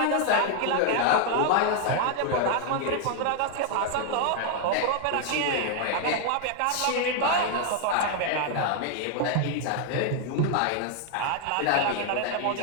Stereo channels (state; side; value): different; both; correlation 0.00